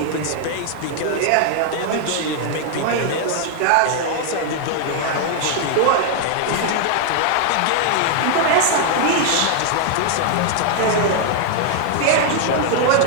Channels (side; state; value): both; different; correlation 0.00